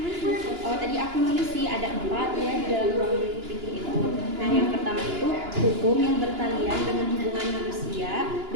Oh tadi aku nulis sih ada 4 ya di dalam ruang lingkup fikih itu. Nah yang pertama itu hukum yang bertalian dengan hubungan manusia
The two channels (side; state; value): left; late; 2.9 ms